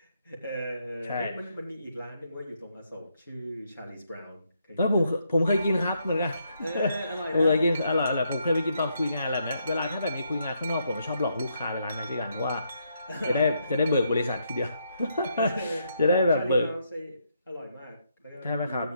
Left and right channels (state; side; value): inverted; both; correlation -0.77